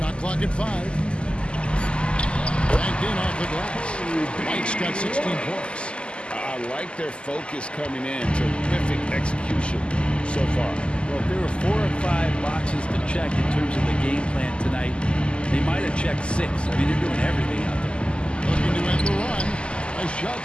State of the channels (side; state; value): right; late; 0.052 ms